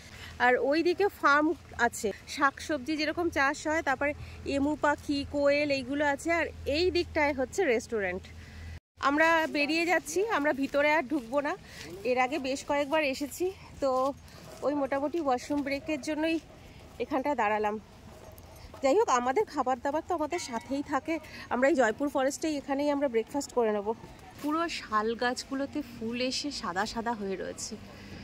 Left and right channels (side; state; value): both; identical; correlation 1.00